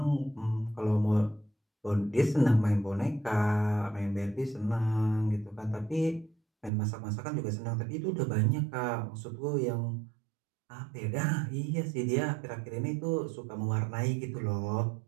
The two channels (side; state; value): left; drops out; at 6.7 s